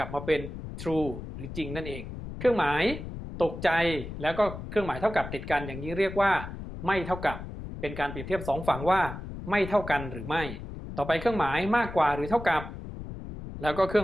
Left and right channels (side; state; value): left; noise; rumble, 9 dB below the sound